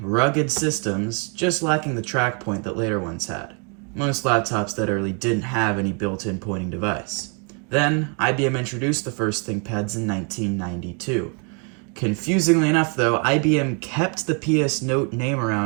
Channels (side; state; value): left; quieter; 36.7 dB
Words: rugged systems, just lacking the track point that later ones had. Most laptops that early didn't have any built-in pointing device. Then, IBM introduced the first ThinkPads in 1992. Confusingly enough though, IBM kept the PS Note name